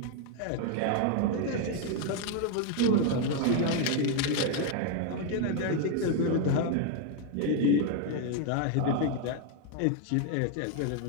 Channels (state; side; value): different; both; correlation 0.01